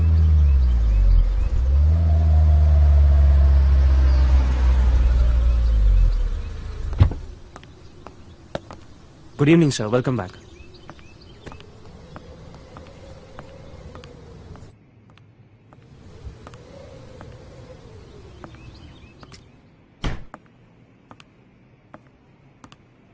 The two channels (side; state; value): both; identical; correlation 1.00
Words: Good evening sir, welcome back.